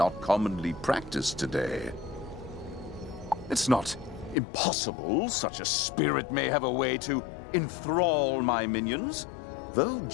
commonly practiced today. It's not impossible such a spirit may have a way to enthrall my minions, though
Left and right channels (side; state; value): right; drops out; at 4.4 s